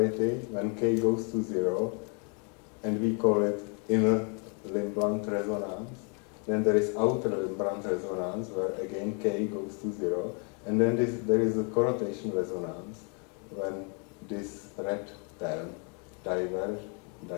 when k goes to 0, and we call it inner limb blunt resonance. Then there is outer limb blunt resonance, where again k goes to 0, and then there is a Corotation resonance when this red term diverges.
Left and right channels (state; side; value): quieter; right; 37.1 dB